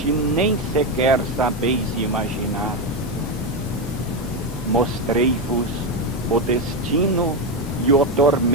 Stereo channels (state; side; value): normal; both; correlation 0.10